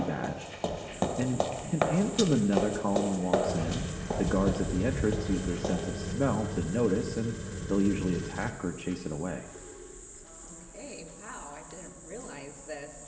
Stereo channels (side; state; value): both; identical; correlation 1.00